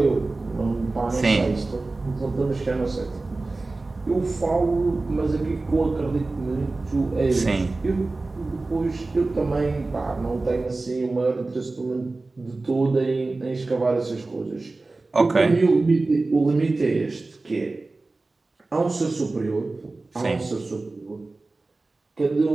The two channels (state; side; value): quieter; left; 3.4 dB